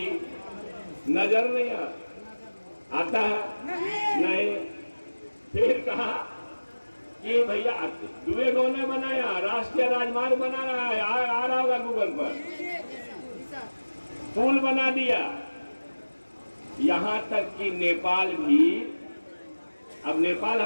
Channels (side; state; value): both; inverted; correlation -1.00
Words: नजर नहीं आता है? नहीं। फिर कहा कि भैया दुबे गांव ने बनाया, राष्ट्रीय राजमार्ग बना रहा है, आ रहा होगा गूगल पर। पुल बना दिया, यहां तक कि नेपाल भी, अब नेपाल